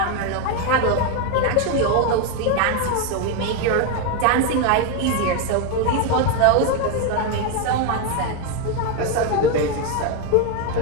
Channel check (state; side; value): different; both; correlation 0.02